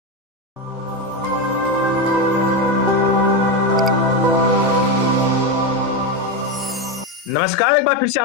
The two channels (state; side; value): normal; both; correlation 0.12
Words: नमस्कार, एक बार फिर से